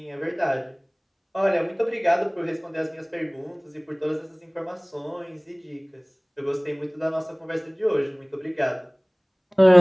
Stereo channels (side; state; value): both; identical; correlation 1.00